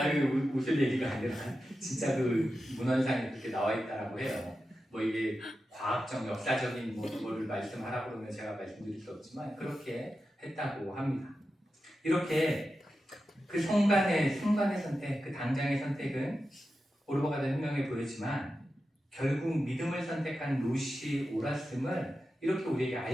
웃을 얘기가 아니라 진짜 그 문헌상에 그렇게 나와 있다라고 해요. 뭐 이게 과학적, 역사적인 뭐를 말씀하라고 그러면 제가 말씀드릴 수 없지만 그렇게 했다고 합니다. 이렇게 그 순간의 선택, 그 당장의 선택은 오르바가 된 혁명에 보였지만 결국 믿음을 선택한 룻이 옳았음을 이렇게 우리에게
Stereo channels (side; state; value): both; normal; correlation 0.91